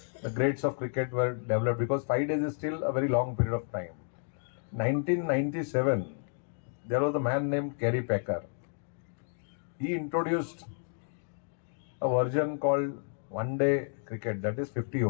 the grades of cricket were developed, because 5 days is still a very long period of time. 1997, there was a man named Kerry Packer. He introduced a version called one day cricket, that is 50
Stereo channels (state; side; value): silent; right; 57 dB below the other